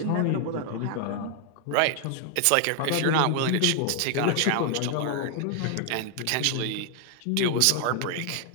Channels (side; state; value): both; different; correlation 0.00